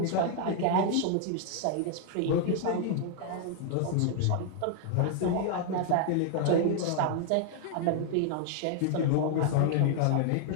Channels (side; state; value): both; different; correlation 0.00